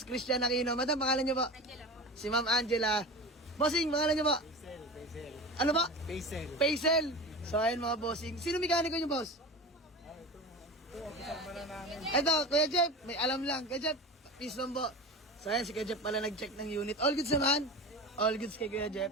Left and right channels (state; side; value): normal; both; correlation 0.30